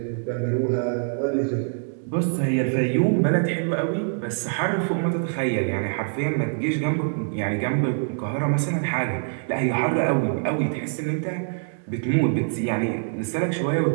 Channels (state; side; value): silent; left; digital silence